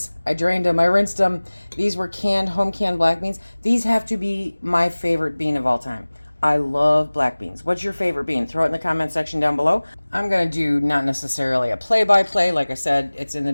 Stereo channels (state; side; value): inverted; both; correlation -1.00